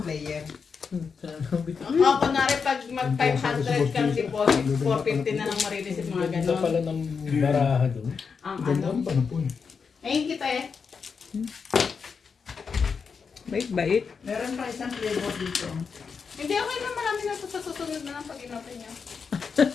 player. Ako, kunwari, pag mag 500 kang deposit, 450 na lang marireceive mga ganon. ng baraha doon. Ang Ganda ano. ang panapon. Ayun kita eh. Bait-bait. Meron pa isang flavor dito. Hindi, okay na, marami na ito sa susunod na lang pag inapin niya.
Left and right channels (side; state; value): right; quieter; 5.7 dB